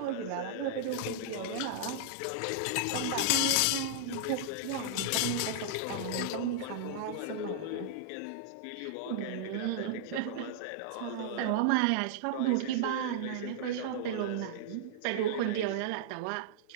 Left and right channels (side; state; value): both; different; correlation -0.01